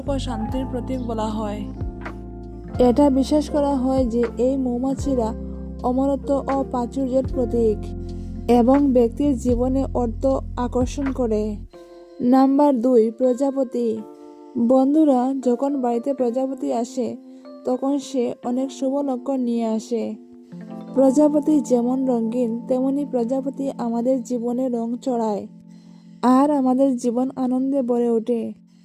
ও শান্তির প্রতীক বলা হয়। এটা বিশ্বাস করা হয় যে এই মৌমাছিরা অমরত্ব ও প্রাচুর্যের প্রতীক এবং ব্যক্তির জীবনে অর্থ আকর্ষণ করে। নাম্বার 2, প্রজাপতি। বন্ধুরা, যখন বাড়িতে প্রজাপতি আসে তখন সে অনেক শুভ লক্ষণ নিয়ে আসে। প্রজাপতি যেমন রঙিন, তেমনি প্রজাপতি আমাদের জীবনে রং চড়ায় আর আমাদের জীবন আনন্দে ভরে ওঠে।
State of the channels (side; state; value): both; identical; correlation 1.00